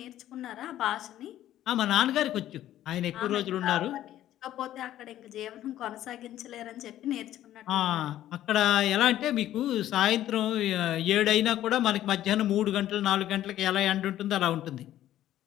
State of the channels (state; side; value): quieter; right; 12.8 dB